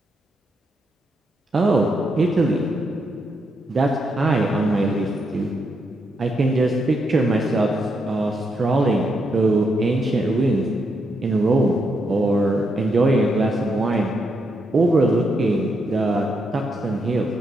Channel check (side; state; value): both; normal; correlation 0.80